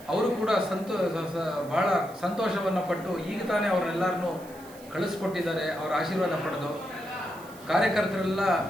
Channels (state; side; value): noise; right; hiss, 21 dB below the sound